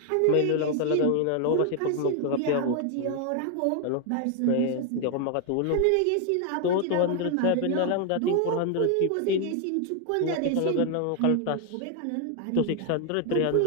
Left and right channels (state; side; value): different; both; correlation 0.00